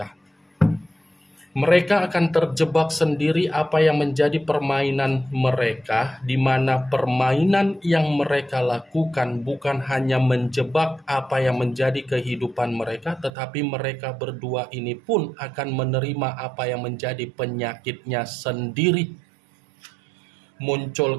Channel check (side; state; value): left; drops out; at 13.3 s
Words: Mereka akan terjebak sendiri apa yang menjadi permainan mereka, di mana permainan yang mereka lakukan bukan hanya menjebak apa yang menjadi kehidupan mereka, tetapi mereka berdua ini pun akan menerima apa yang menjadi penyakitnya sendiri. Muncul